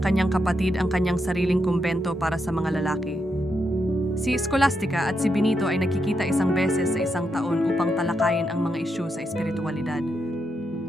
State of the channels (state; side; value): normal; both; correlation 0.82